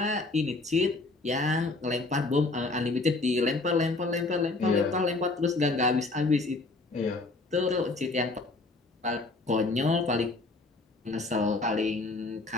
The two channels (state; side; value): quieter; right; 3.4 dB